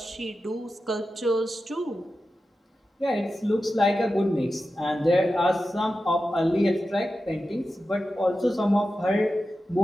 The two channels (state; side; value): normal; both; correlation 0.92